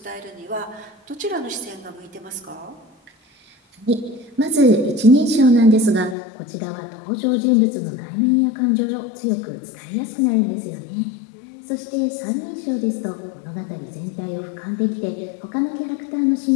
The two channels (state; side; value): drops out; right; at 6.2 s